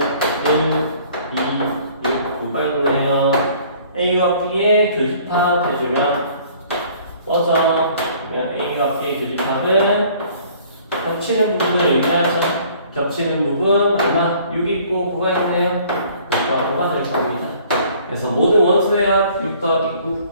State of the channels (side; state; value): both; inverted; correlation -0.55